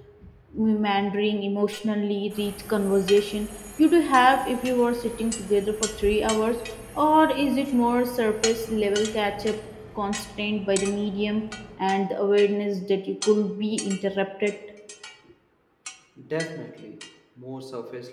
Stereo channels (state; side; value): identical; both; correlation 1.00